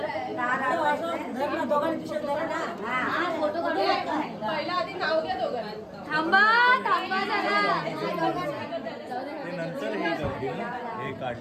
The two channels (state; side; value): identical; both; correlation 1.00